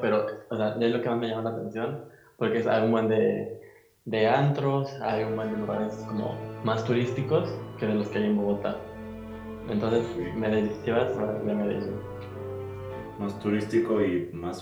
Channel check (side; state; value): both; identical; correlation 1.00